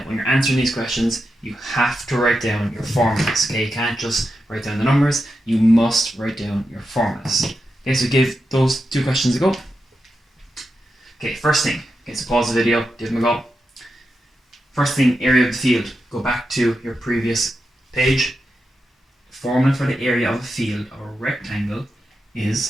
when you're answering these questions, you have to write down your formulas. Okay, you can't just write down the numbers. You must write down your formulas. Okay, so give those 2 questions a go. Okay, first thing. Okay, so pause the video, give them a go. First thing, area of the field. Go back to your previous page. Formula for the area of a field or a rectangle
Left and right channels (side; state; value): both; normal; correlation 0.88